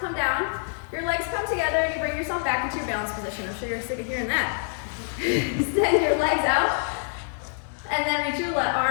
come down, your legs come together, and you bring yourself back into your balance position. I'm sure you're sick of hearing that. Extend your legs out, and then reach your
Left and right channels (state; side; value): silent; right; 61 dB below the other